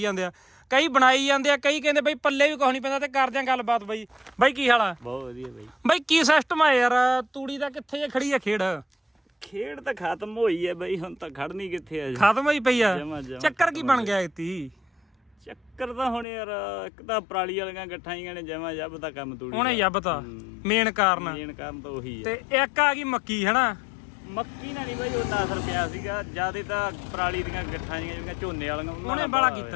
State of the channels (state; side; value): drops out; right; at 16.2 s